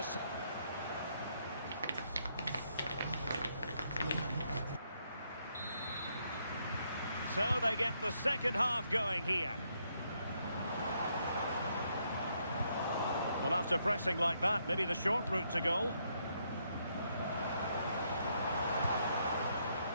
So they get the second half going here. Well, after pressing like that, maybe the short route to goal.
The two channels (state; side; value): inverted; both; correlation -0.75